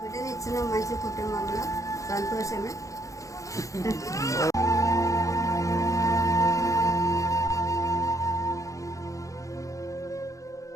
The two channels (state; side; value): late; right; 0.16 ms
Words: బిడ్డని ఇచ్చిన మంచి కుటుంబంలో సంతోషమే.